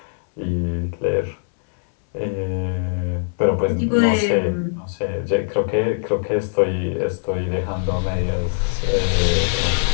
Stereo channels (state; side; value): silent; right; 64 dB below the other